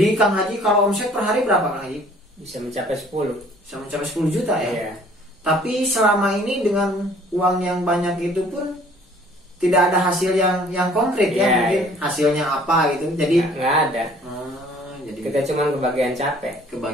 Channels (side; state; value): both; normal; correlation 0.55